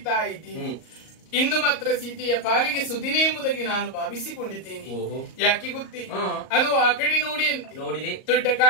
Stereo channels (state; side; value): late; right; 38 ms